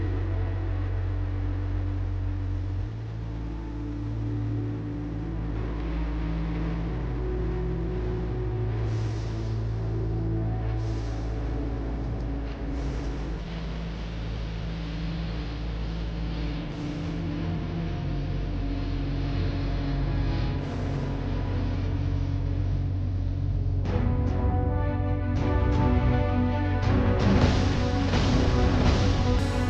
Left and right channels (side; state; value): both; identical; correlation 1.00